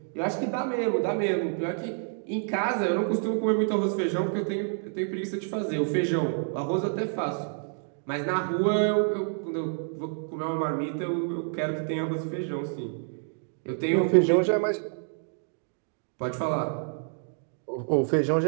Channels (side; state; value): left; silent; 59 dB below the other